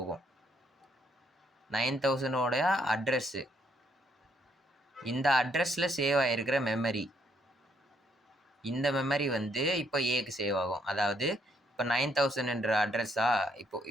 9000ஓடைய அட்ரஸ்ஸு, இந்த அட்ரஸில் சேவ் ஆகிருக்கிற மெமரி, இந்த மெமரி வந்து இப்போ ஏக்கு சேவ் ஆகும். அதாவது இப்போ 9000ன்ற அட்ரஸா,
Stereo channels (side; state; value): both; normal; correlation 0.72